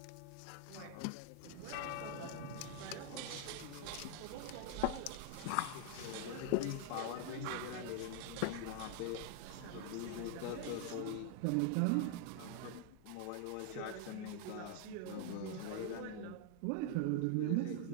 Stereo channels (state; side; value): different; both; correlation 0.00